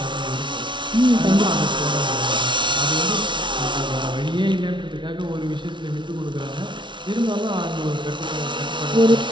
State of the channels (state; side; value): late; left; 0.24 ms